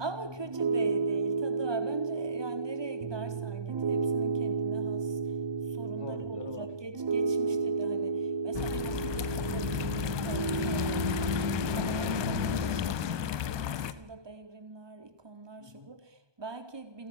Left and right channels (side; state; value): left; late; 1.2 ms